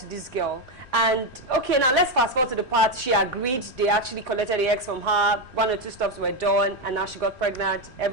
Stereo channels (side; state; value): both; normal; correlation 0.09